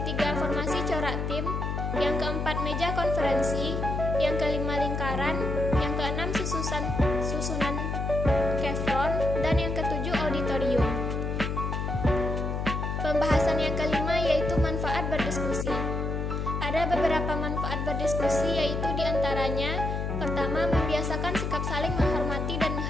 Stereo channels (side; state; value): left; noise; hum, 2 dB below the sound